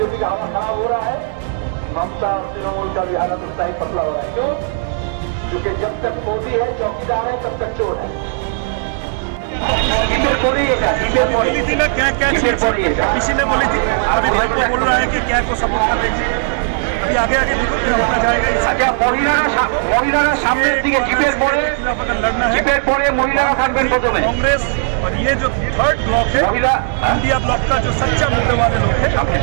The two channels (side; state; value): left; silent; digital silence